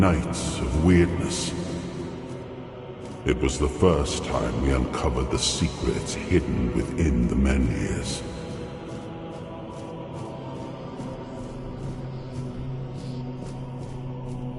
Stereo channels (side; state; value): both; identical; correlation 1.00